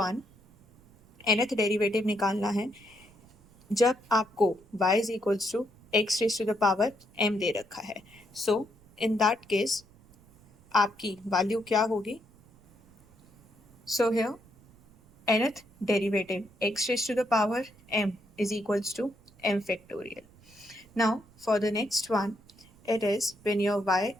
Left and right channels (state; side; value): noise; right; rumble, 27 dB below the sound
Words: nth derivative निकालना है जब आपको y is equals to x raise to the power m दे रखा है। सो इन दैट केस आपकी वैल्यू क्या होगी? So here nth derivative x raised to the power m is equals to m factorial. Now for the next one, it is when your y